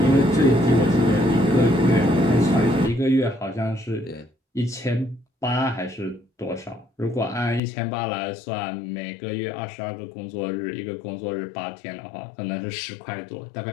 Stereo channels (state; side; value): drops out; right; at 7.6 s